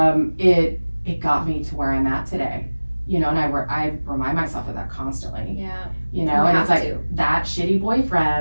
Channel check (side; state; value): both; inverted; correlation -1.00